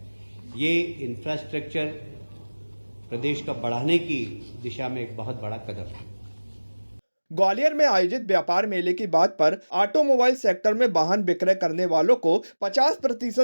ये इंफ्रास्ट्रक्चर प्रदेश का बढ़ाने की दिशा में एक बहुत बड़ा कदम है। ग्वालियर में आयोजित व्यापार मेले की बात पर ऑटोमोबाइल सेक्टर में वाहन विक्रय करने वालों को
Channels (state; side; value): inverted; both; correlation -1.00